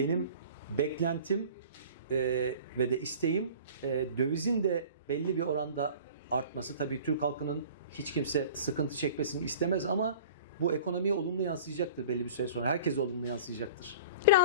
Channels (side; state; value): both; inverted; correlation -0.43